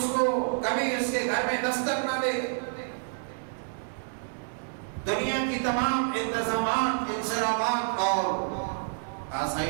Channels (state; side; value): silent; left; digital silence